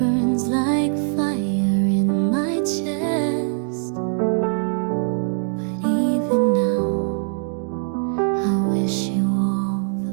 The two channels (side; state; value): left; silent; 63 dB below the other